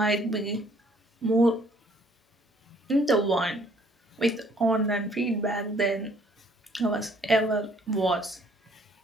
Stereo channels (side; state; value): both; normal; correlation 0.61